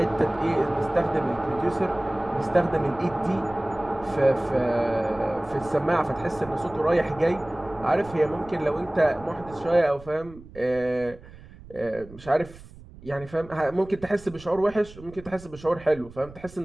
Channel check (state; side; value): noise; right; rumble, 19 dB below the sound